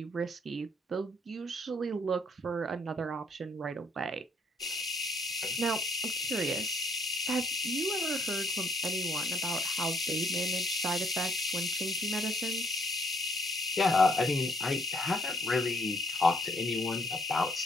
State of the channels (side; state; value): both; normal; correlation 0.66